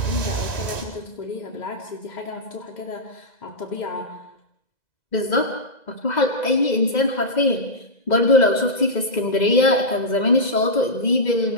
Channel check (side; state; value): right; late; 2.0 ms